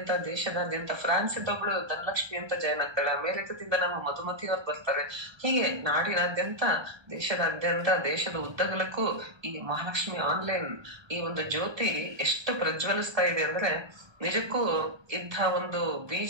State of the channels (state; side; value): late; left; 1.3 ms